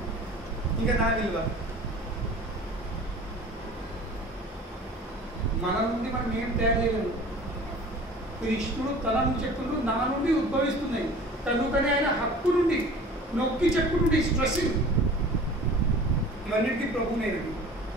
ఇంకా నా విలువ. మన నుండి మనం ఏం తయారు చేయలేము. కృష్ణుడు తన నుండి చెప్తున్నాడు, నా నుండి ఉద్భవిస్తున్నాయి. కనుకనే ఆయన హక్కు నుండి నొక్కి చెప్పుకుంటే స్ట్రెస్సింగ్ ఇవన్నిటికీ ప్రభునేది.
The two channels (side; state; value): both; normal; correlation 0.43